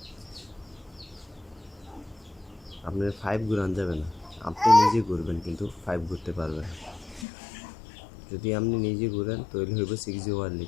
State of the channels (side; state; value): right; drops out; at 7.2 s